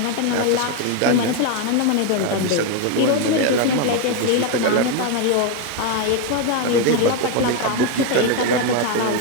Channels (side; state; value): both; different; correlation 0.02